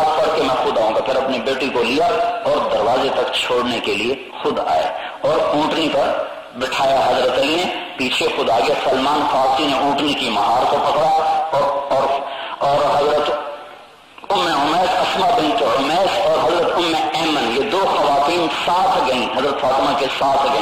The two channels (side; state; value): both; identical; correlation 1.00